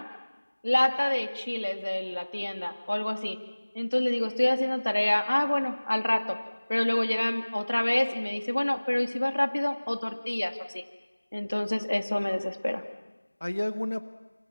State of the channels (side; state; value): both; inverted; correlation -1.00